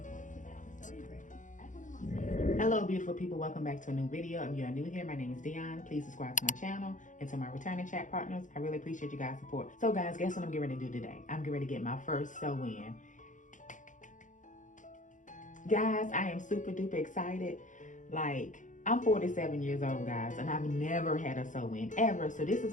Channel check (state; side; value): late; right; 0.37 ms